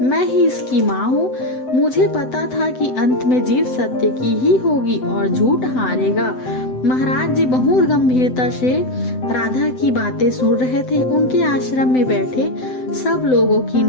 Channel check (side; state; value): right; late; 7.9 ms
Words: ही इसकी माँ हूँ। मुझे पता था कि अंत में जीत सत्य की ही होगी और झूठ हारेगा। महाराज जी बहुत गंभीरता से राधा की बातें सुन रहे थे। उनके आश्रम में बैठे सब लोगों की